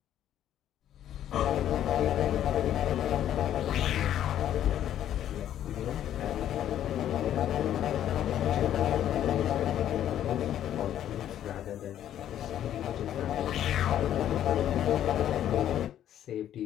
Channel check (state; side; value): quieter; right; 11.1 dB